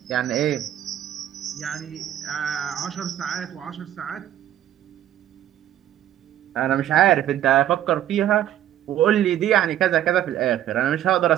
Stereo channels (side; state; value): left; quieter; 11.9 dB